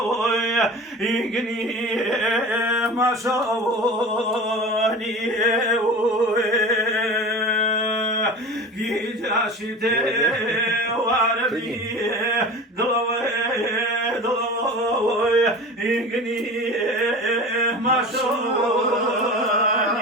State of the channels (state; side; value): normal; both; correlation 0.34